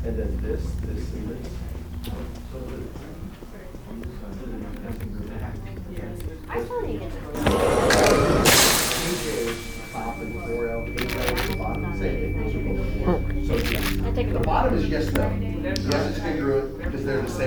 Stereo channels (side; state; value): both; identical; correlation 1.00